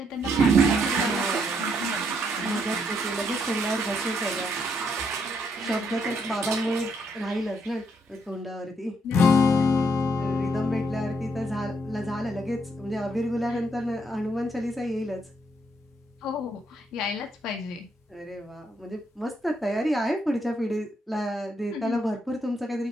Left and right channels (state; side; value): normal; both; correlation 0.74